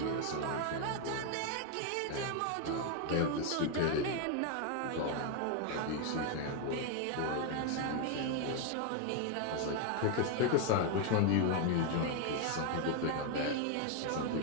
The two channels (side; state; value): both; different; correlation 0.01